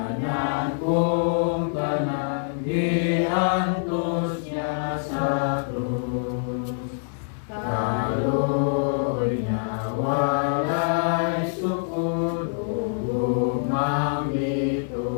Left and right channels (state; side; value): silent; right; digital silence